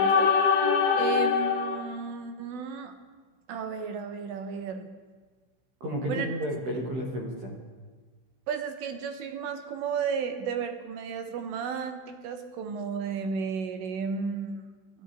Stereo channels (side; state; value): left; late; 16 ms